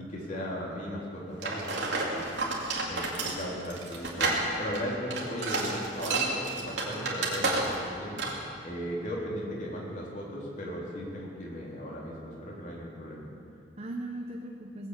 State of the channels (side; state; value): both; normal; correlation 0.17